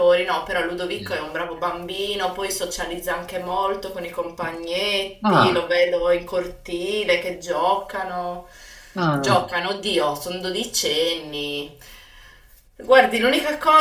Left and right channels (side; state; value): both; identical; correlation 1.00